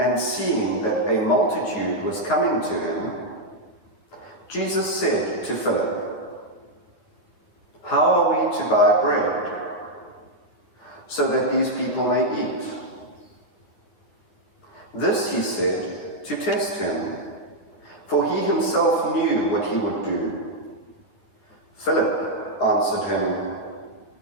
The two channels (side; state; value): right; late; 9.7 ms